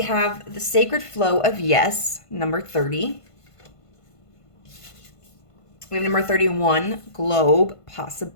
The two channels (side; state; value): right; late; 1.5 ms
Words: have the Sacred Flow of Yes, number 30. We have number 31, Globe